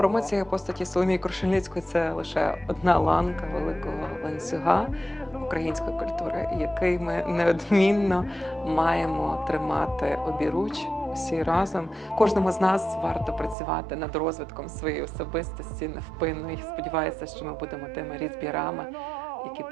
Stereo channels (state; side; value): drops out; left; at 13.6 s